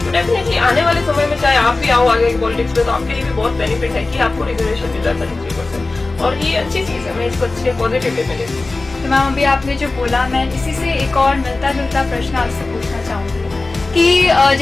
तो डेफिनेटली आने वाले समय में चाहे आप भी आओ आगे की पॉलिटिक्स में तो आपके लिए भी बहुत बेनिफिट है कि आपको रिजर्वेशन मिल रहा है 33%, और ये अच्छी चीज है। मैं इसको अच्छे पॉजिटिव वे में लेती हूँ। तो मैम अभी आपने जो बोला, मैं इसी से एक और मिलता जुलता प्रश्न आपसे पूछना चाहूंगी कि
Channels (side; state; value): right; quieter; 3.3 dB